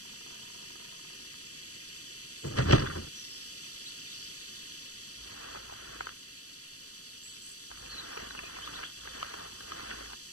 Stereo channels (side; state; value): right; late; 0.66 ms